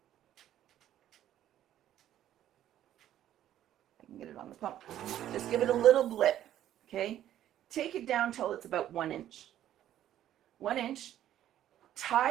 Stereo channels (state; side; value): quieter; left; 11.9 dB